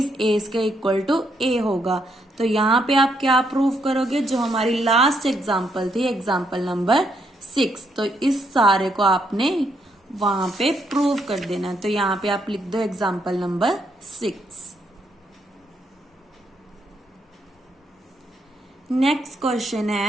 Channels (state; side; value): normal; both; correlation 0.76